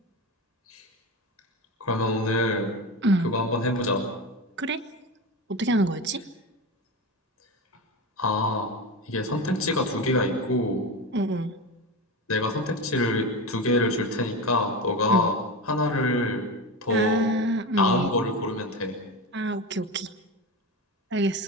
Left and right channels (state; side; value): normal; both; correlation 0.22